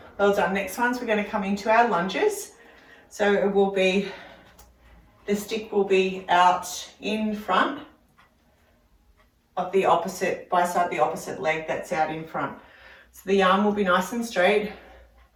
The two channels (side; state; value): both; identical; correlation 1.00